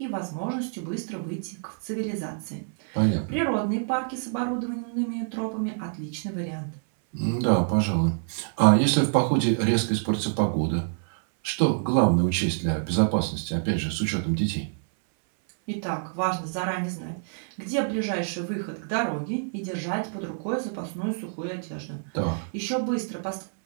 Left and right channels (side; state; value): left; silent; 60 dB below the other